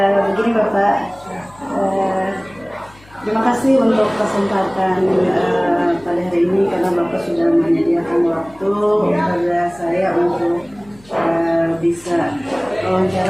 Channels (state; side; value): noise; left; hum, 26 dB below the sound